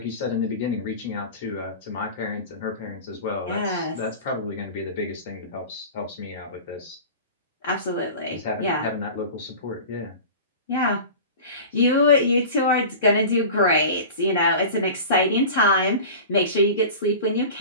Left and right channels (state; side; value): inverted; both; correlation -0.35